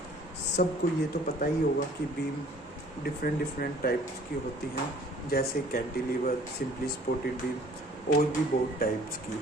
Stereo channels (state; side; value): normal; both; correlation 0.54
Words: सबको ये तो पता ही होगा कि बीम डिफरेंट टाइप्स की होती हैं, जैसे कैंटिलीवर, सिंपली सपोर्टेड बीम और भी बहुत टाइप्स की।